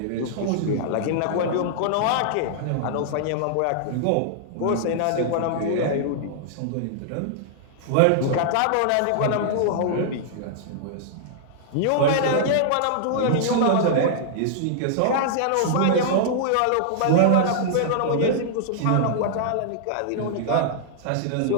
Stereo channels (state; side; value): different; both; correlation -0.01